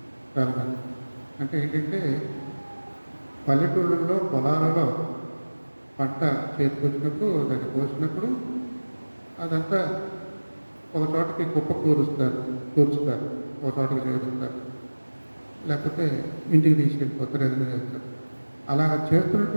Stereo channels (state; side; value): inverted; both; correlation -1.00